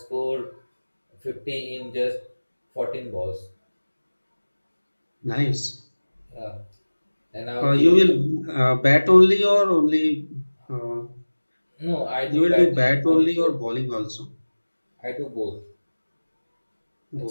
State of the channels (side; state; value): both; inverted; correlation -1.00